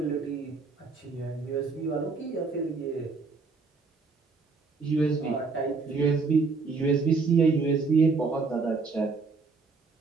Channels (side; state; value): left; quieter; 4.4 dB